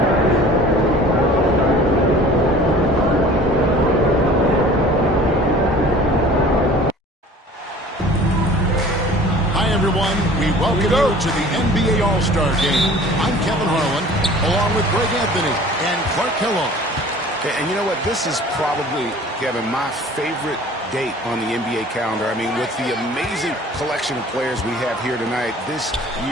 To the NBA All-Star Game. I'm Kevin Harlan, along with Greg Anthony and Clark Kellogg. And you know what? This is probably, Kevin, my favorite date on the NBA calendar. I mean, with the amazing collection of players we have here tonight, this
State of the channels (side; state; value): both; normal; correlation 0.47